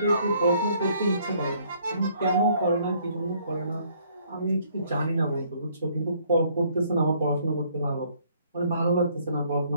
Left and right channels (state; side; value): inverted; both; correlation -0.64